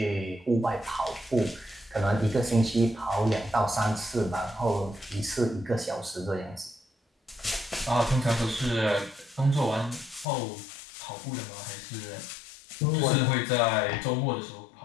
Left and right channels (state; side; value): drops out; right; at 10.2 s